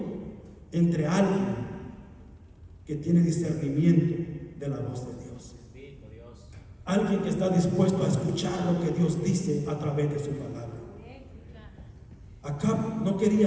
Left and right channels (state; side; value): identical; both; correlation 1.00